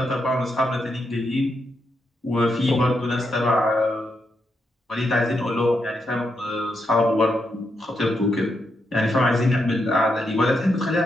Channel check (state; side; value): normal; both; correlation 0.82